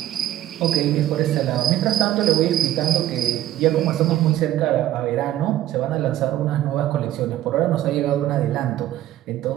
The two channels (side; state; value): left; quieter; 13.2 dB